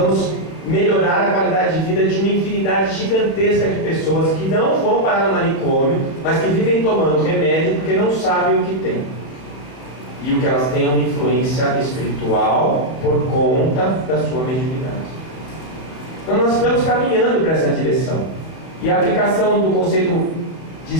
melhorar a qualidade de vida de uma infinidade gigantesca de pessoas que não vão parar no manicômio, mas que vivem tomando remédio porque não sabem o que tem. E o que elas têm é uma influência espiritual por conta da sua mediunidade. Então nós estamos caminhando para essa direção. E a aplicação do conceito de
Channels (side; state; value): right; late; 32 ms